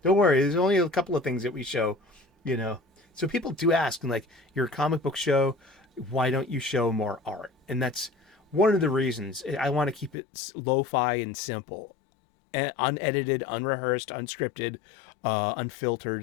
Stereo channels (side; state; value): right; drops out; at 10.2 s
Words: Don't worry, there's only a couple of things that we show, So people do ask, and like, you're a comic book show, why don't you show more art? And that's one of the reasons. I want to keep it lo-fi and simple, and unedited, unrehearsed, unscripted,